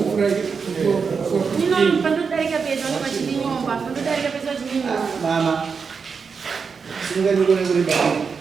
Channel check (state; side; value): quieter; left; 5.6 dB